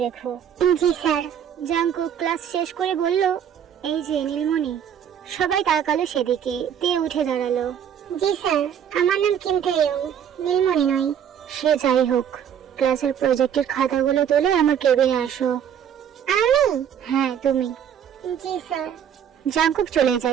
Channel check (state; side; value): quieter; left; 8.8 dB